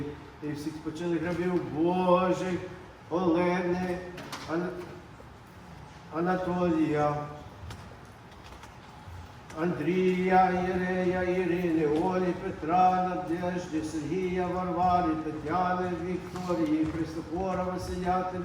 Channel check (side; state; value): both; identical; correlation 1.00